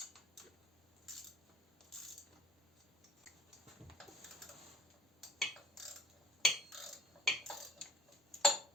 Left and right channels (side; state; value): both; normal; correlation 0.52